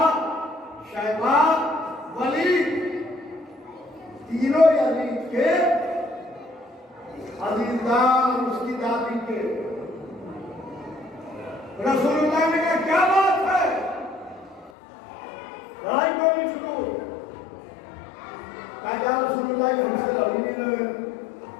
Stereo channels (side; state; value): right; drops out; at 14.7 s